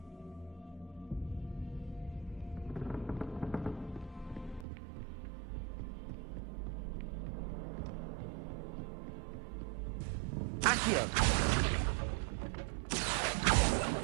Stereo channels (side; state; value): left; drops out; at 4.7 s